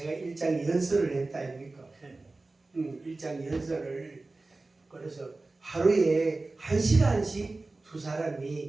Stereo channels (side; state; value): left; quieter; 3.3 dB